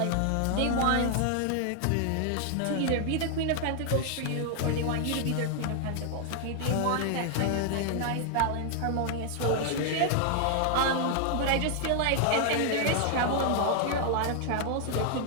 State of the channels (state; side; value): different; both; correlation 0.00